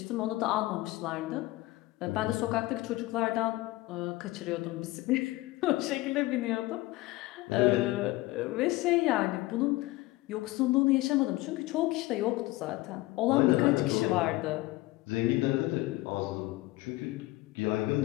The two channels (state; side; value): quieter; right; 19.4 dB